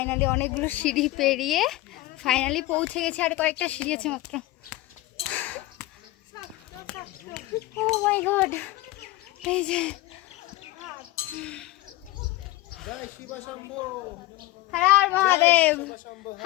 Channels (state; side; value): quieter; right; 17.9 dB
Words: অনেকগুলো সিঁড়ি পেরিয়ে ফাইনালি পৌঁছে গেছি, আর কয়েকটা সিঁড়ি আছে মাত্র। ও মাই গড, এই যে হর হর মহাদেব,